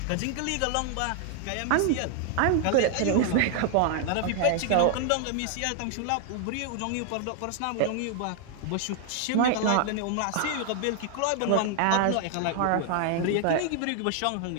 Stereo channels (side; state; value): both; different; correlation 0.00